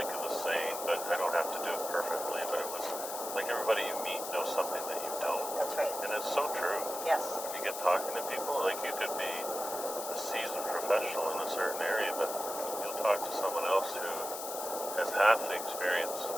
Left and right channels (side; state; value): left; noise; hiss, 7 dB below the sound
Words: of the saying, but I don't have to do it perfectly, but it was like everybody you meet knows something that you don't. That's right. And it's so true. Yes. When you get talking to people, like, you could be a seasoned professional in a certain area, but you'll talk to someone else who has half the experience